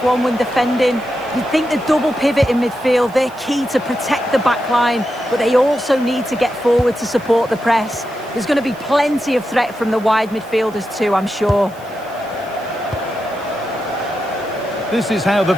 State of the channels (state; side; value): noise; right; hiss, 25 dB below the sound